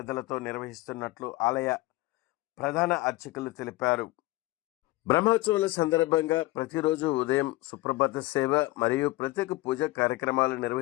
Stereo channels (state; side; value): quieter; right; 19.2 dB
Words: నిర్వహిస్తున్నట్లు ఆలయ ప్రధాన అర్చకులు తెలిపారు. బ్రహ్మోత్సవాల సందర్భంగా ప్రతిరోజు ఉదయం సుప్రభాత సేవ మరియు ప్రత్యేక పూజ కార్యక్రమాలు